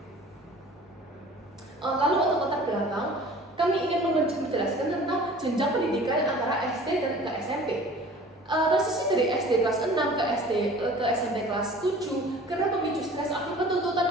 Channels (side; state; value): both; normal; correlation 0.46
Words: Lalu untuk latar belakang, kami ingin menjelaskan tentang jenjang pendidikan antara SD dan ke SMP. Transisi dari SD kelas 6 ke SMP kelas 7 karena pemicu stres akibat tuntutan